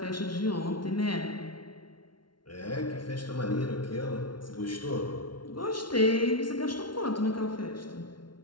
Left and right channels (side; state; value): right; late; 0.72 ms